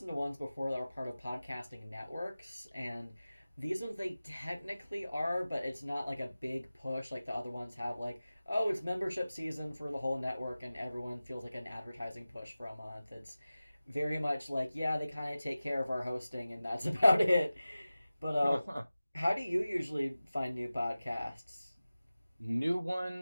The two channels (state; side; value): inverted; both; correlation -0.96